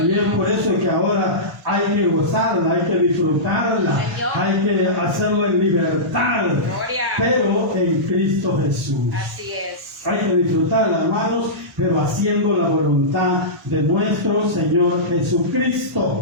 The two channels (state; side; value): late; left; 1.9 ms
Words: es por eso que ahora hay que gozarla, hay que disfrutarla, hay que hacerlo en libertad, pero en Cristo Jesús. Así es. Hay que disfrutarla, hermanos, pero haciendo la voluntad de nuestro Señor